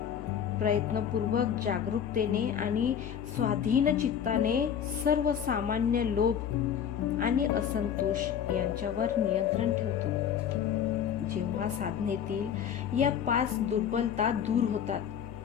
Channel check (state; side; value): quieter; right; 8.6 dB